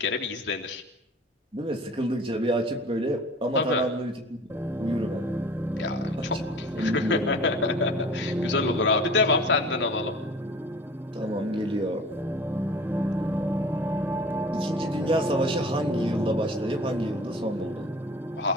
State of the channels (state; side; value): normal; both; correlation 0.42